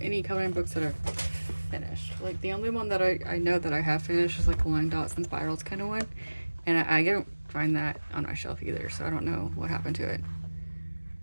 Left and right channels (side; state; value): both; inverted; correlation -1.00